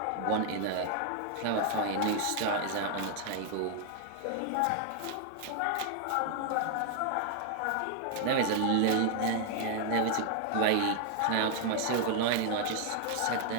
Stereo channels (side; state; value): both; different; correlation 0.00